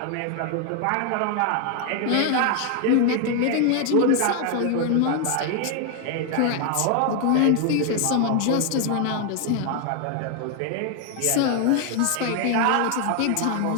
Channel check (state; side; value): different; both; correlation 0.01